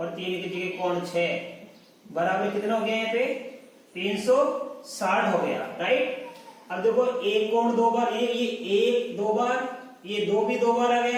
3 की जगह कोण 6। बराबर कितना हो गया यहाँ पे, 360 हो गया, राइट। अब देखो 1 कोण 2 बार, ये 1 2 बार, ये 2 भी 2 बार आ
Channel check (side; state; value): both; identical; correlation 1.00